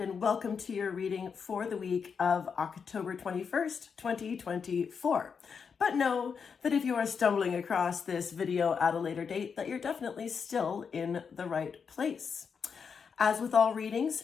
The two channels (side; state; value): right; quieter; 6.1 dB